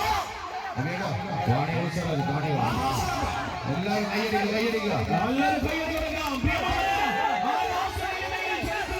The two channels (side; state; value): both; identical; correlation 1.00